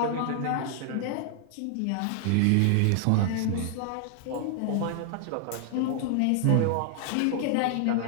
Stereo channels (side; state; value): both; different; correlation 0.00